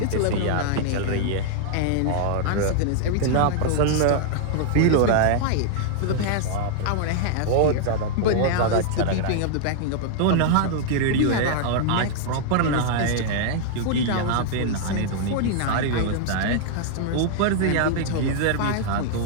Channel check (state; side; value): different; both; correlation -0.01